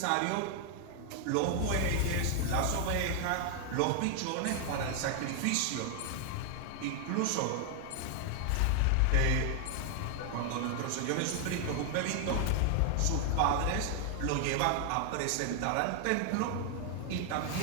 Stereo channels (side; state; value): both; different; correlation 0.00